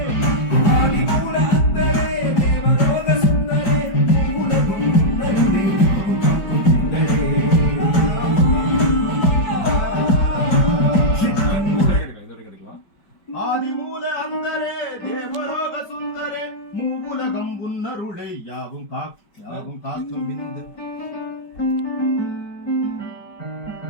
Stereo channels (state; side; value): late; right; 4.9 ms